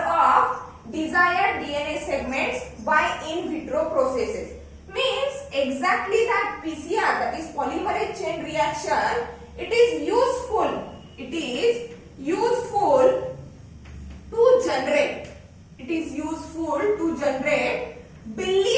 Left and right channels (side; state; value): both; identical; correlation 1.00